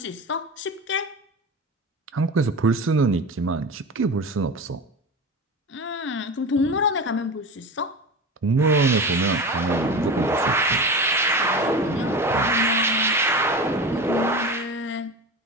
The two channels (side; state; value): both; normal; correlation 0.28